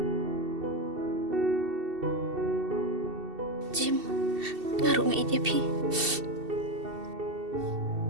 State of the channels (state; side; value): late; left; 2.7 ms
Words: Jim, ngaruh ngai dia pi.